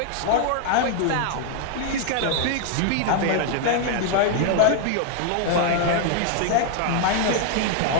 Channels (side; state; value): both; different; correlation 0.00